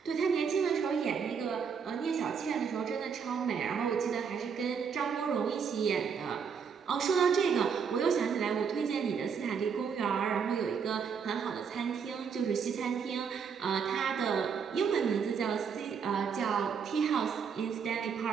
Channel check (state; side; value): quieter; left; 6.5 dB